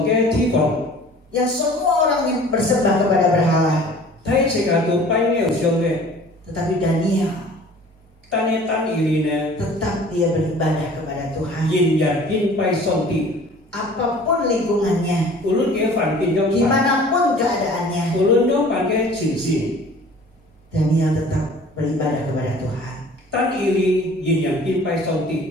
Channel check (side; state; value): both; normal; correlation 0.48